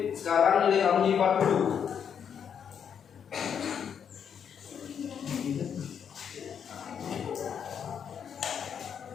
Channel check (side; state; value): right; quieter; 7.8 dB